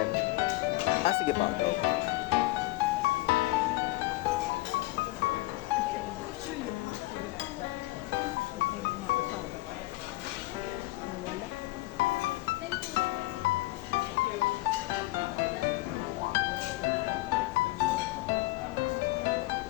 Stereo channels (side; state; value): right; quieter; 20.2 dB